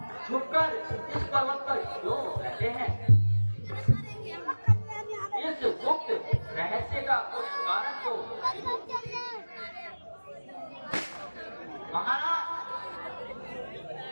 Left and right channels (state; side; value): inverted; both; correlation -1.00